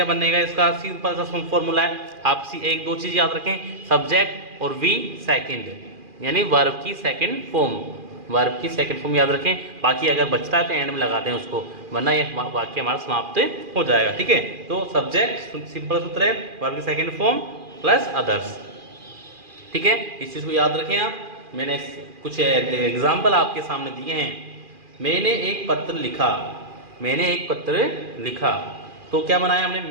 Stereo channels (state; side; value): late; left; 2.4 ms